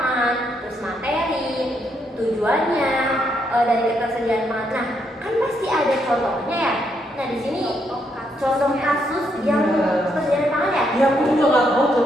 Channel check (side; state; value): both; normal; correlation 0.76